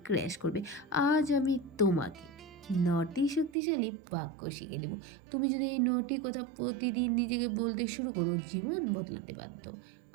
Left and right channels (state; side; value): drops out; left; at 3.5 s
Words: ক্র্যাশ করবে। আজ আমি তোমাকে 9টি শক্তিশালী বাক্য শিখে দেব। তুমি যদি এই 9টি কথা প্রতিদিন নিজেকে বলতে শুরু করো, জীবন বদলাতে বাধ্য।